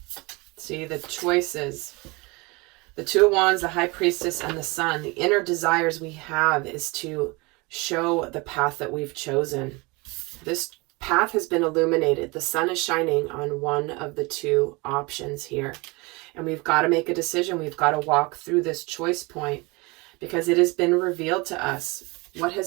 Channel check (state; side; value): quieter; left; 26.0 dB